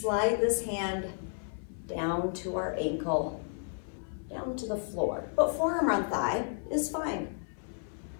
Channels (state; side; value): silent; right; 56 dB below the other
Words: this hand down to our ankle, down to the floor. But forearm on thigh is fine.